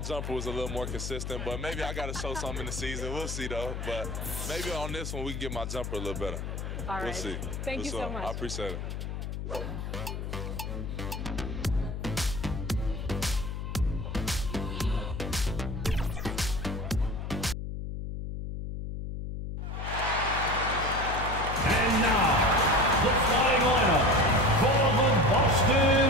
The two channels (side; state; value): left; noise; hum, 5 dB below the sound